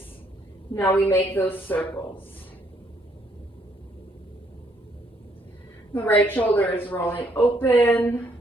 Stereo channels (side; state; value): both; normal; correlation 0.69